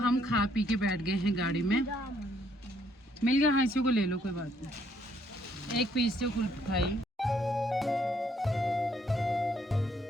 खा पी के बैठ गए हैं गाड़ी में। मिल गया, हाँ इसी को ले लो, कोई बात नहीं। एक पीस से कुल खाई।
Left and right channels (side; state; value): both; normal; correlation 0.69